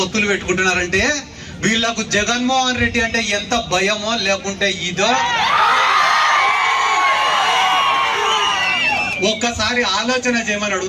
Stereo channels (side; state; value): both; identical; correlation 1.00